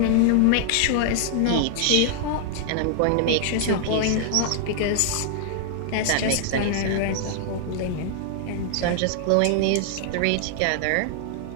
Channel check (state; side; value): different; both; correlation 0.00